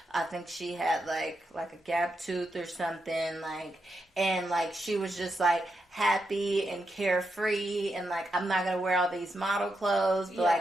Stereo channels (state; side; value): normal; both; correlation 0.84